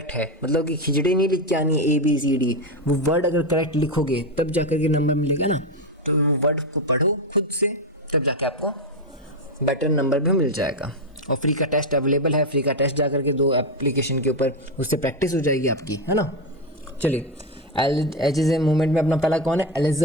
है, मतलब कि खिचड़ी नहीं लिख के आनी ABCD, वो वर्ड अगर करेक्ट लिखोगे तब जाकर के नंबर मिलेगा ना। तो वो वर्ड को पढ़ो खुद से, तब जाके आपको बेटर नंबर भी मिल जाएगा। और फ्री का टेस्ट अवेलेबल है, फ्री का टेस्ट जाकर के 2 एप्लीकेशन के ऊपर, उससे प्रैक्टिस हो जाएगी आपकी, है ना। चलिए, एजेस एंड मूवमेंट में अपना पहला कौन है,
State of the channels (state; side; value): normal; both; correlation 0.09